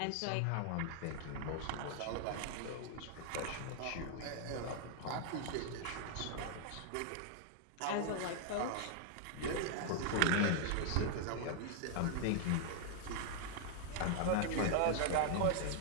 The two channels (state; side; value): different; both; correlation 0.00